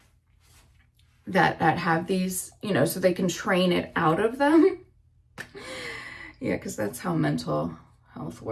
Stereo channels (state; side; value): identical; both; correlation 1.00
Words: have these, you know, so they can train it out of them. Yeah, because that's how mental health